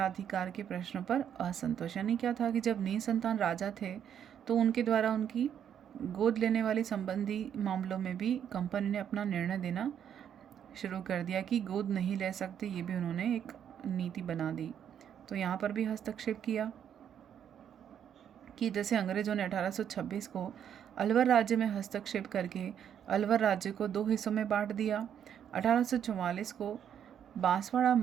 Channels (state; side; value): quieter; left; 9.0 dB